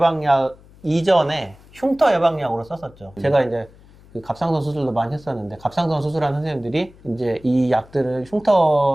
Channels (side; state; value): left; noise; hum, 25 dB below the sound